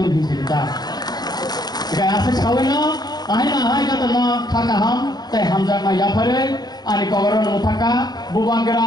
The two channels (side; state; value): right; late; 0.20 ms